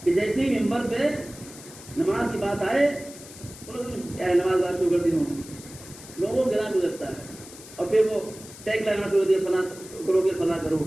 کہ جیسے ہی ممبر پہ نماز کی بات آئے کیا نماز بات شروع کر دی ہوں، لوگوں کو گرا گزرتا ہے اور پھر وہ ٹیگ لگانا شروع دیا فلاں کرو گے فلاں کرو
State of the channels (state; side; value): noise; left; hiss, 17 dB below the sound